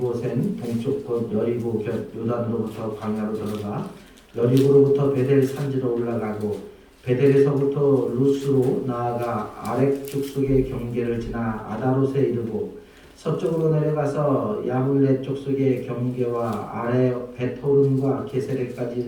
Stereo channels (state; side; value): identical; both; correlation 1.00